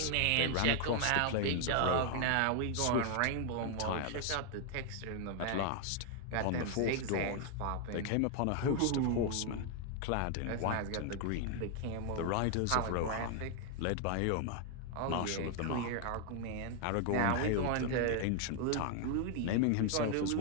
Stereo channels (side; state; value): both; different; correlation 0.00